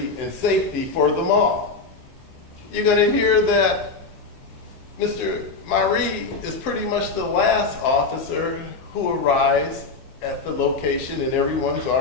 and safety for the mall. You're going to hear that Mr. Marie is pretty much the last officer who arrives at the location, and everyone's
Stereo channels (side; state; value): right; quieter; 4.1 dB